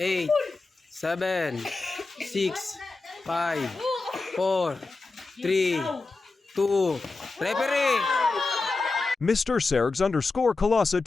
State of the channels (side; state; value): right; quieter; 3.7 dB